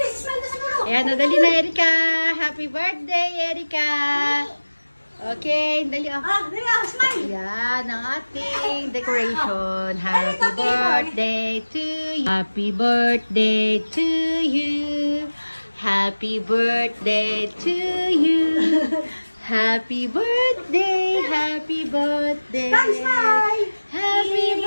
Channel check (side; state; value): both; inverted; correlation -1.00